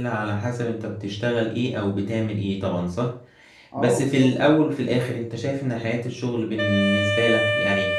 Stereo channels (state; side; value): identical; both; correlation 1.00